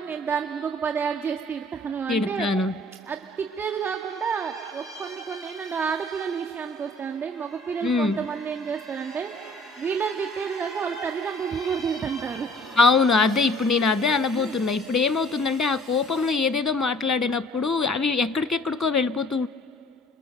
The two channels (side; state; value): both; normal; correlation 0.54